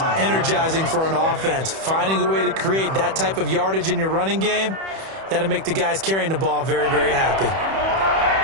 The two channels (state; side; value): late; left; 31 ms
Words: energizing for an offense. Finding a way to create that type of yardage in your running game, that'll make the guys carrying the ball very, very happy.